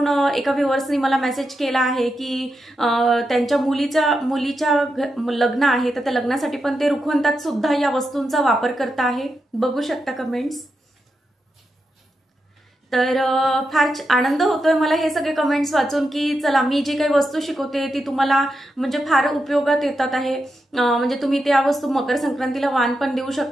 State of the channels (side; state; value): both; normal; correlation 0.86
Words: एका व्ह्यूअर्सनी मला मेसेज केला आहे की त्यांच्या मुलीच्या लग्न आहे, तर त्या लग्नासाठी पण ते रुखवंतात सुद्धा या वस्तूंचा वापर करत आहे, बघू शकता कमेंट्स। तर फार आनंद होतोय मला हे सगळे कमेंट्स वाचून की चला मी जी काही वस्तू शिकवते ती तुम्हाला म्हणजे फार उपयोगात येतात आहे। म्हणजे तुम्ही त्या वस्तू मकर संक्रांतीला वाण पण देऊ